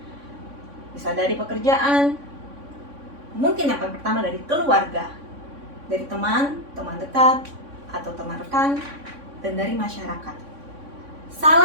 Bisa dari pekerjaan, mungkin yang pertama dari keluarga, dari teman dekat, atau teman rekan, dan dari masyarakat.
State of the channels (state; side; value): late; left; 3.6 ms